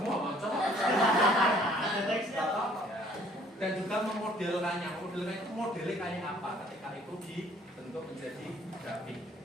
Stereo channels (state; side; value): normal; both; correlation 0.58